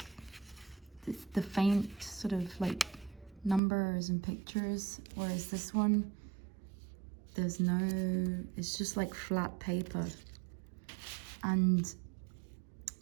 the faint sort of like numbers and pictures, whereas this one, there's no, it's just like flat paper. And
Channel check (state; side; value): drops out; left; at 3.6 s